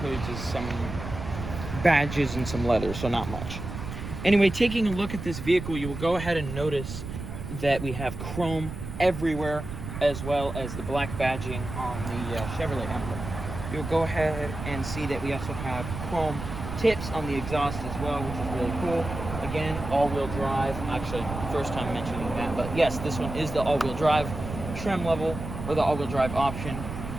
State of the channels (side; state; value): right; noise; rumble, 8 dB below the sound